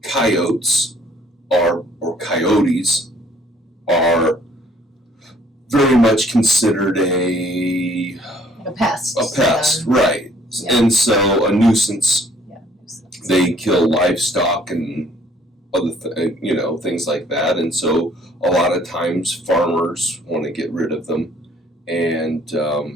coyotes or coyotes are very much considered a pest. A pest, right. Yeah. And so a nuisance. Yeah, nuisance. They kill livestock and other things like that. And so a lot of times farmers want to get rid of them. And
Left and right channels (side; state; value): both; normal; correlation 0.61